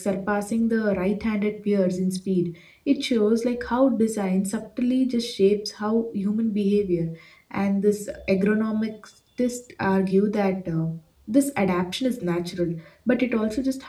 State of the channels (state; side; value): identical; both; correlation 1.00